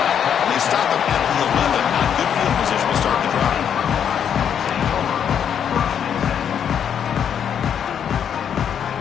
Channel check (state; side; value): quieter; right; 8.4 dB